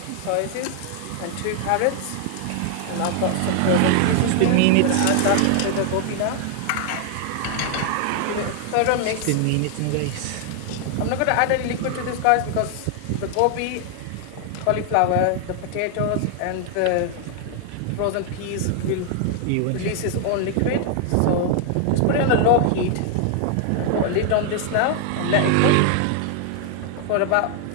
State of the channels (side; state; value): both; different; correlation 0.00